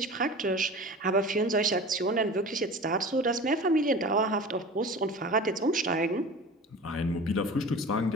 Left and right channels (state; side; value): normal; both; correlation 0.37